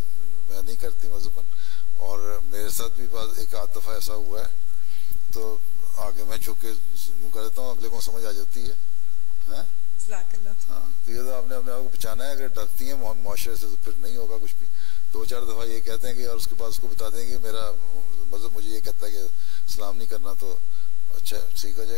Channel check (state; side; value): normal; both; correlation 0.89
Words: नहीं करती मज़हबन। और मेरे साथ भी एक आध दफ़ा ऐसा हुआ है, तो आगे मैं झुक के यूँ कर देता हूँ, अगले को समझ आ जाती है। हाँ, तो ये तो आपने अपने आप को बचाना है। अगर डरती हैं मुआशरे से तो फिर नहीं होगा कुछ भी। 2-4 दफ़ा ये कहते हैं कि, और उसके बाद उसको बता देंगे कि मेरा मज़हब मुझे ये कहता है कि सलाम नहीं करना, तो अच्छा ठीक हो